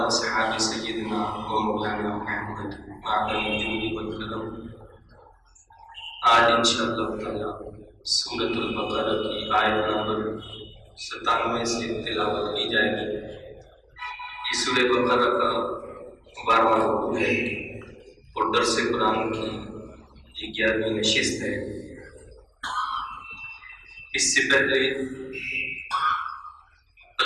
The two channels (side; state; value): both; identical; correlation 1.00